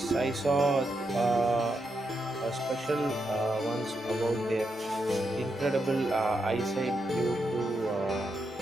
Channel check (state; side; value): normal; both; correlation 0.83